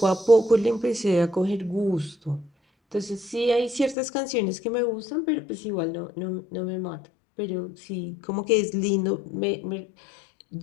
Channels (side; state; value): right; drops out; at 4.0 s